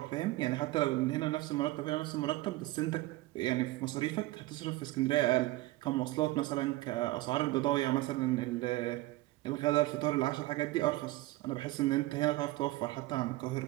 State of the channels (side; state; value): left; quieter; 19.0 dB